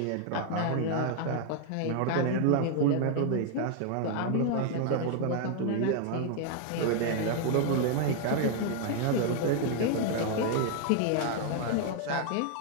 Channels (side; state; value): both; different; correlation 0.00